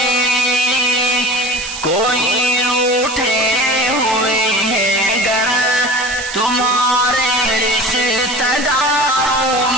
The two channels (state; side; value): noise; right; hiss, 9 dB below the sound